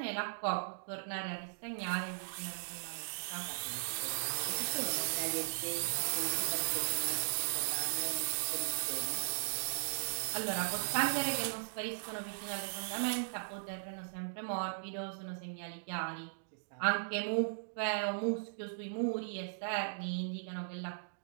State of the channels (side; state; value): left; silent; digital silence